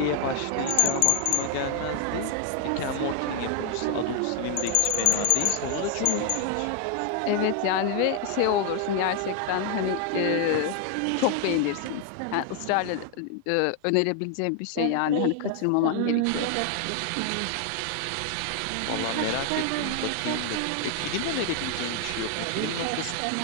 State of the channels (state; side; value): different; both; correlation 0.00